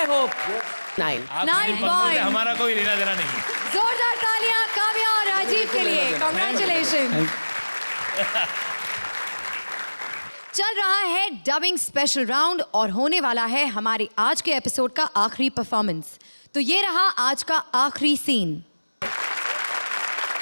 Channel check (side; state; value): both; inverted; correlation -1.00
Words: I hope. 9. आप 9 मेरी पंक्ति से points. हमारा कोई लेना देना नहीं है। जोरदार तालियां काव्या और राजीव के लिए। Congratulations. चल रहा है डबिंग स्पेशल राउंड और होने वाला है हमारे आज के एपिसोड का आखिरी परफॉर्मेंस। तो ये रहा आज का आखिरी सीन।